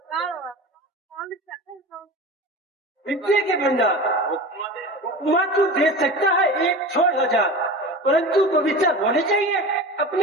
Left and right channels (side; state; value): both; normal; correlation 0.32